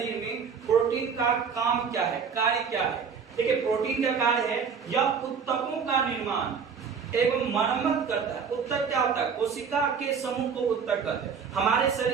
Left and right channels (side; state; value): left; quieter; 6.3 dB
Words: में प्रोटीन का काम क्या है, कार्य क्या है। देखिए प्रोटीन का कार्य है यह ऊतकों का निर्माण एवं मरम्मत करता है। ऊतक क्या होता है? कोशिका के समूह को ऊतक कहते हैं। हमारे